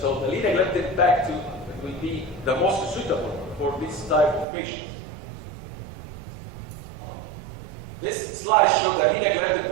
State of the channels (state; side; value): drops out; left; at 4.5 s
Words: the linagliptin back to it will be the most suitable for this type of patients. This slide shows that linagliptin